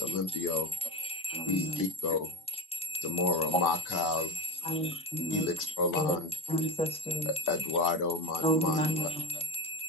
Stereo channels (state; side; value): normal; both; correlation 0.17